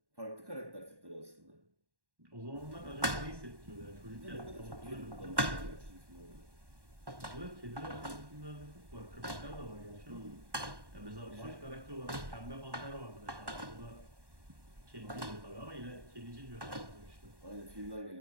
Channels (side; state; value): left; late; 1.1 ms